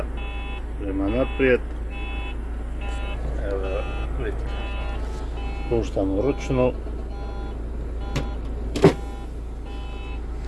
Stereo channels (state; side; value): identical; both; correlation 1.00